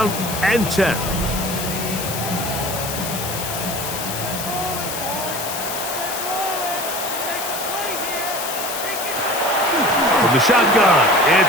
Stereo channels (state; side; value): noise; left; hiss, 6 dB below the sound